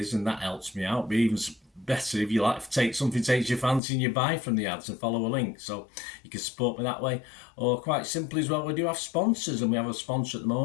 and that helps me out. But even better if you like to take something takes your fancy and you buy from the ads and follow a link, so you can support me that way. Or quite simply as well, we do have sponsors, and we have a sponsor at the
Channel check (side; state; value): right; drops out; at 3.8 s